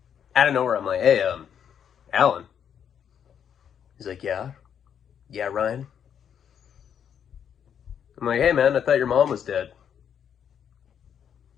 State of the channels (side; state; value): right; quieter; 8.4 dB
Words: of nowhere, I'm like, "Hey, Alan." He's like, "Yeah, Ryan." I'm like, "Hey, man, I thought your mom was dead."